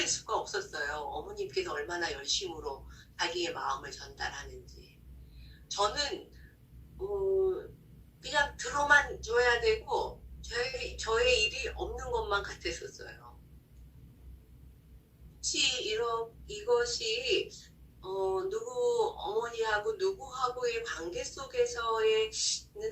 수가 없었어요. 어머님께서 얼마나 열심으로 자기의 마음을 전달하는지. 저는 그냥 들어만 줘야 되고 저의 일이 없는 것만 같았었어요. 혹시 이것이 누구 어머니하고 누구하고의 관계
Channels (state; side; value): identical; both; correlation 1.00